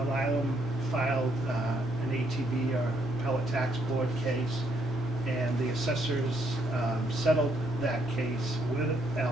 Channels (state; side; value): normal; both; correlation 0.72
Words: filed an ATB or appellate tax board case, and the assessors settled that case with